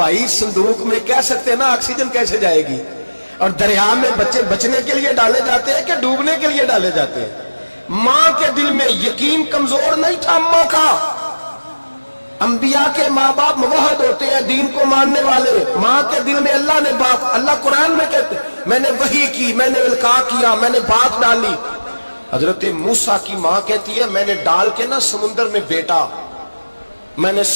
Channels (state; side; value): inverted; both; correlation -1.00